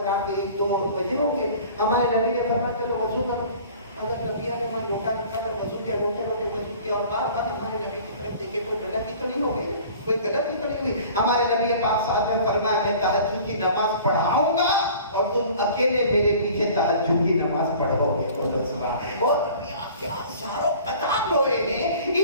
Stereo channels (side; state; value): both; inverted; correlation -0.47